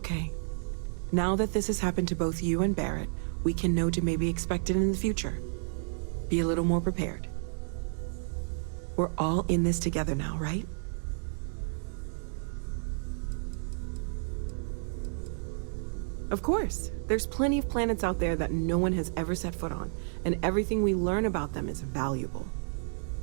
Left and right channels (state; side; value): silent; left; digital silence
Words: Now that this has happened to both you and Barrett, we can know to maybe expect it in the future. Be a little more prepared. We're all in this together now, right? Of course. There's plenty of planets out there that no one has ever set foot on, and everything we learn about them is valuable.